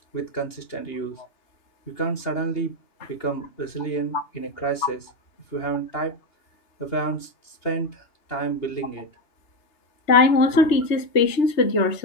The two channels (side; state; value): right; late; 2.8 ms